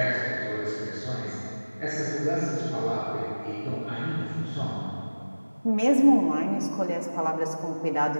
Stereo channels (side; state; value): both; inverted; correlation -1.00